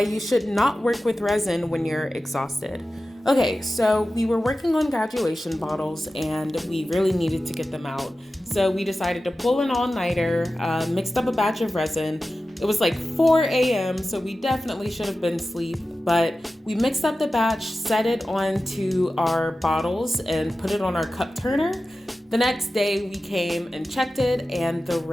should not work with resin when you're exhausted. Okay, so we were working on graduation bottles and we really needed to get them out. So we decided to pull an all-nighter, mixed up a batch of resin. It was like 4 a.m., so we definitely should have been asleep, but we mixed up the batch, set it onto our bottles, and put it on our cup turner. The next day we came and checked it and the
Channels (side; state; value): both; normal; correlation 0.94